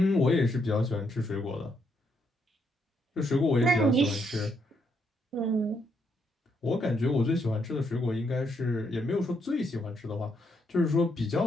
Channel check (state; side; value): normal; both; correlation 0.76